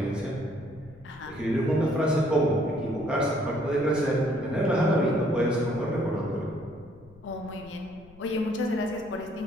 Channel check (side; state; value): left; noise; rumble, 22 dB below the sound